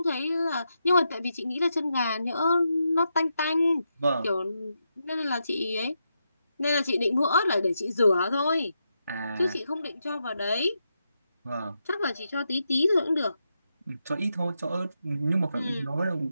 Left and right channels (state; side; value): inverted; both; correlation -0.85